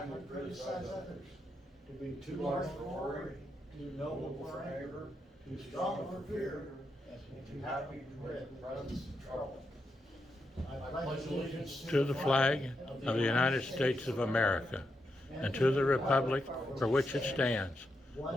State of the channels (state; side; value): normal; both; correlation 0.83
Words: to criticize others. To be too large for worry, too noble for anger, too strong for fear, and too happy to dread the presence of trouble. I pledge allegiance To the flag of the United States of America, and to the republic for which it stands,